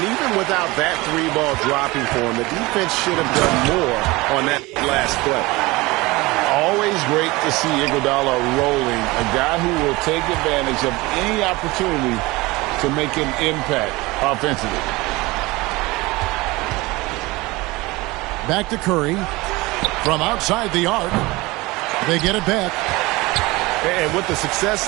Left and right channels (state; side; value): quieter; left; 21.9 dB